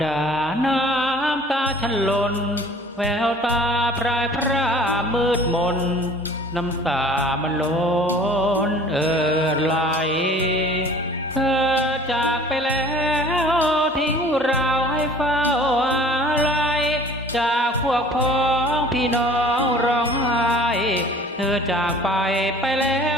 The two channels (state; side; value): normal; both; correlation 0.48